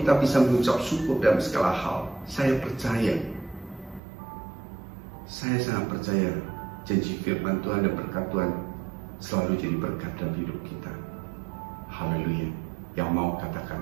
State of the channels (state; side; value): drops out; left; at 4.0 s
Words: bisa mengucap syukur dalam segala hal, saya sangat percaya janji firman Tuhan dan berkat Tuhan selalu jadi berkat dalam hidup kita. Haleluya. Yang mau katakan